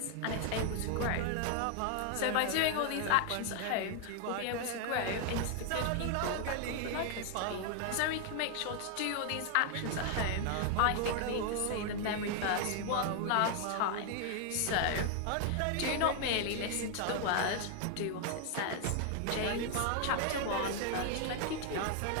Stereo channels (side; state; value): both; different; correlation 0.00